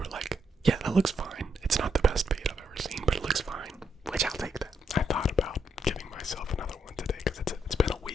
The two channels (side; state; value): both; normal; correlation 0.76